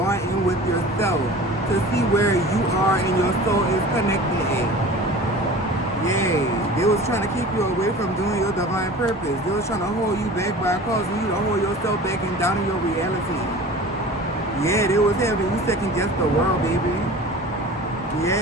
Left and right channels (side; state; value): both; normal; correlation 0.39